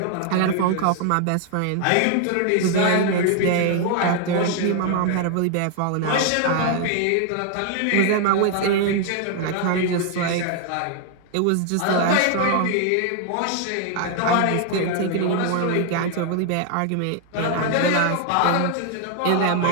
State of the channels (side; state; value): both; different; correlation 0.00